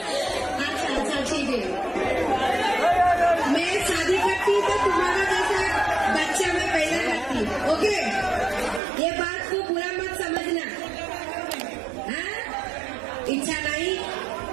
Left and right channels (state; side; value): drops out; left; at 8.8 s